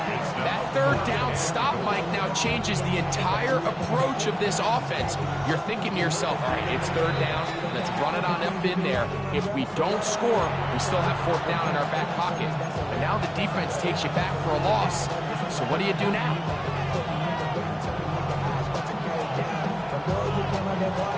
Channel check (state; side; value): identical; both; correlation 1.00